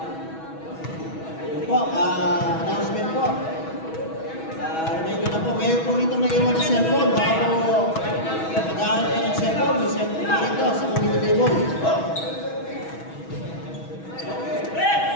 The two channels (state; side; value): late; right; 6.2 ms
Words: Po, announcement po. Reminder na po, mayroon po rito nag-iwan ng cellphone. Baka po nag-aaral ka ng cellphone, may cellphone po rito sa community table.